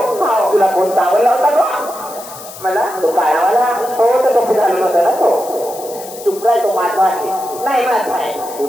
तुला कोण चावला होता का मला तो काळावाला हो तो टोपी घालून होता ना तो चुप राय तो माझा आहे नाही माझा आहे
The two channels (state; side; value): noise; left; hiss, 15 dB below the sound